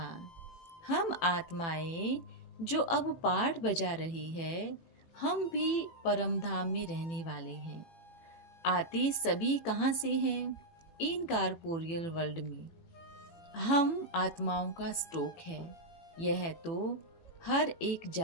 हम आत्माएं जो अब पाठ बजा रही है, हम भी परम धाम में रहने वाले हैं। आते सभी कहाँ से हैं? इन कॉर्पोरियल वर्ल्ड में। हम आत्माओं का स्टॉक है। यह तो हर एक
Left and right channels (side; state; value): right; late; 18 ms